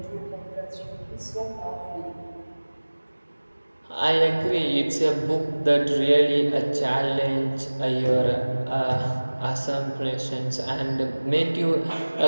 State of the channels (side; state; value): both; inverted; correlation -1.00